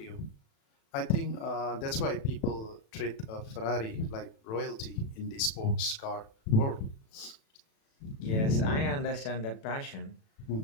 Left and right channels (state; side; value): late; right; 36 ms